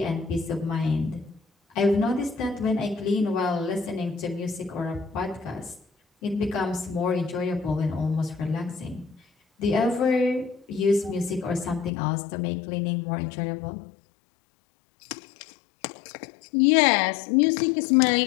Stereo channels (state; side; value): drops out; right; at 11.9 s